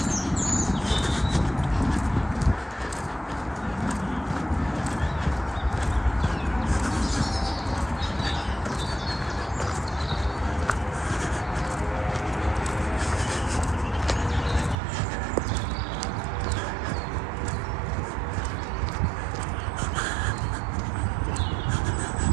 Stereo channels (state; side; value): drops out; left; at 14.8 s